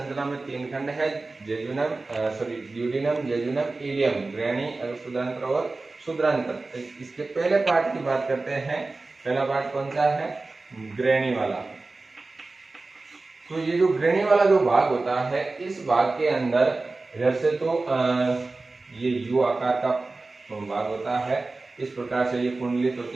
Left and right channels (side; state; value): left; quieter; 3.4 dB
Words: में 3 खंड है, ड्यूडेनम, जेजुनम, इलियम, ग्रहणी, अग्र शूद्रांतर और शूद्रांतर। इसके पहले पार्ट की बात करते हैं। पहला पार्ट कौन सा है? ग्रहणी वाला। तो ये जो ग्रहणी वाला जो भाग होता है, इस भाग के अंदर इधर से तो ये यू आकार का भाग होता है, इस प्रकार से ये कुंडलित